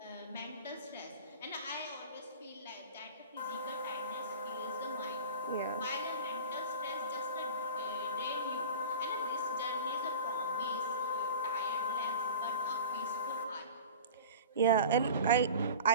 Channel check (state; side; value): inverted; both; correlation -0.36